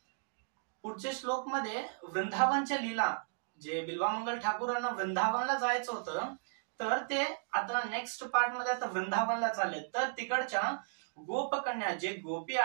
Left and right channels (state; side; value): silent; left; digital silence